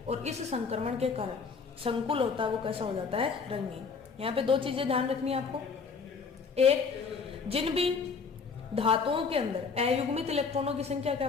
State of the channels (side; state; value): right; quieter; 5.2 dB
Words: और इस संक्रमण के कारण संकुल होता है वो कैसा हो जाता है, रंगीन। यहाँ पे दो चीजें ध्यान रखनी है आपको। एक, जिन भी धातुओं के अंदर अयुग्मित इलेक्ट्रॉनों की संख्या क्या